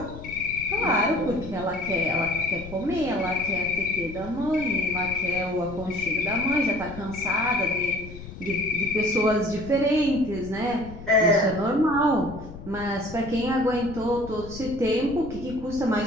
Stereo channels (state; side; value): noise; left; rumble, 13 dB below the sound